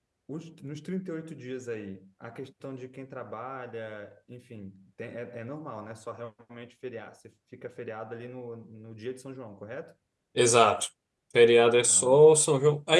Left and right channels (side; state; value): both; identical; correlation 1.00